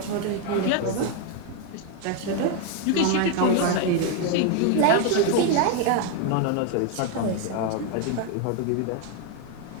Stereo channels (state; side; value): different; both; correlation 0.01